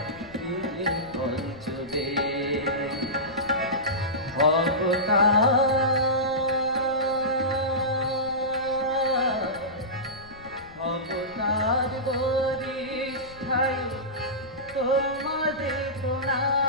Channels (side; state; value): left; noise; rumble, 21 dB below the sound